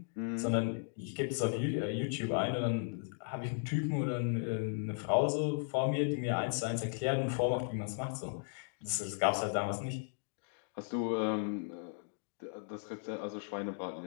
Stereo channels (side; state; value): right; silent; digital silence